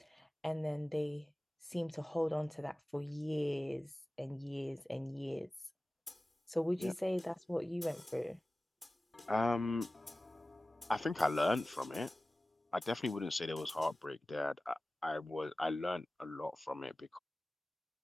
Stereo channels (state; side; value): normal; both; correlation 0.97